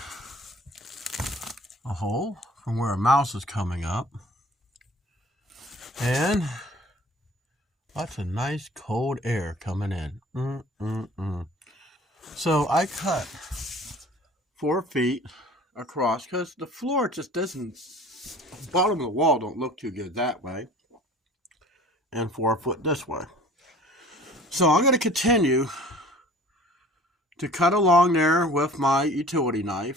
a hole from where a mouse is coming up, and lots of nice cold air coming in. So I cut 4 feet across because the floor just doesn't, the bottom of the wall don't look too good that way, and 4 foot this way. So I'm going to continue to cut along there with my utility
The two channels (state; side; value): normal; both; correlation 0.47